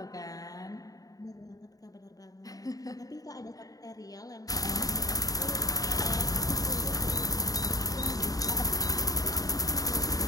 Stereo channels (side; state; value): right; late; 0.18 ms